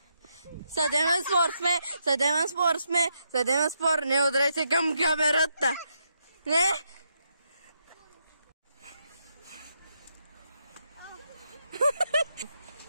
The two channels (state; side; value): inverted; both; correlation -0.80